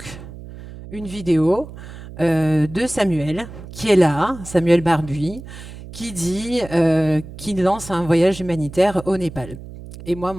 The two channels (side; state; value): right; noise; hum, 14 dB below the sound